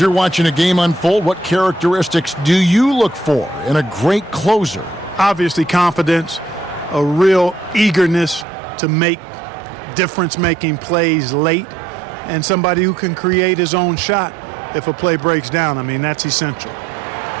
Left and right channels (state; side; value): drops out; left; at 8.5 s